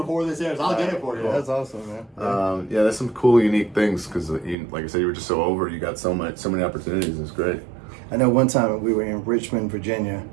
this airs. I'll get it for you. That's awesome, man. Yeah, there's some cool, unique things because, like I said, you were just so over. You got so many opportunities. It's great. I know one time we were in Richmond, Virginia,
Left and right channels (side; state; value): left; drops out; at 4.5 s